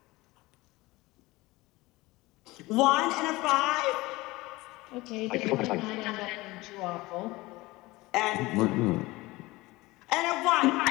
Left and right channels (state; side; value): quieter; right; 20.7 dB